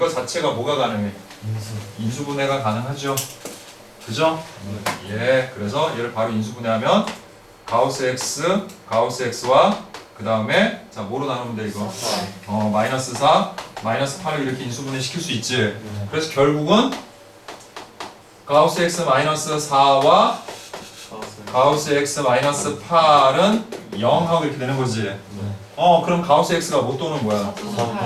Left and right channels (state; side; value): identical; both; correlation 1.00